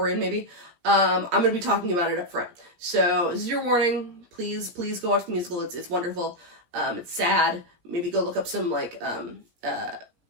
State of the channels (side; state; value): left; late; 17 ms